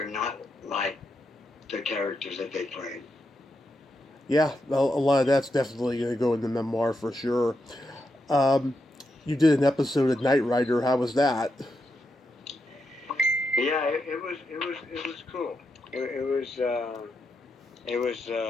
not like the characters that they played. Yeah, a lot of that's definitely going to go in the memoir for sure. You did an episode of Knight Rider. How was that? Yeah, it was cool. It was a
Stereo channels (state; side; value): normal; both; correlation 0.84